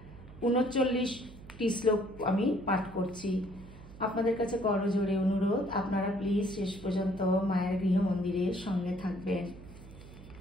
39টি শ্লোক আমি পাঠ করছি। আপনাদের কাছে করজোড়ে অনুরোধ, আপনারা প্লিজ শেষ পর্যন্ত মায়ের গৃহ মন্দিরের সঙ্গে থাকবেন।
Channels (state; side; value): noise; right; hum, 18 dB below the sound